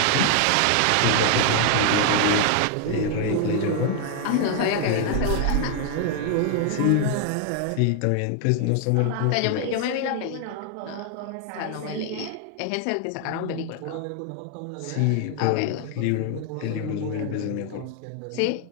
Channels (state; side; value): different; both; correlation 0.00